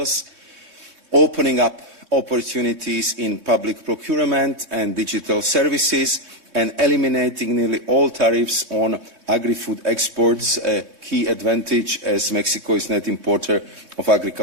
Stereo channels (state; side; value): late; left; 3.6 ms